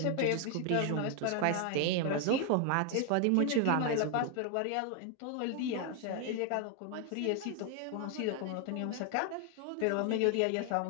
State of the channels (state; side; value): different; both; correlation 0.00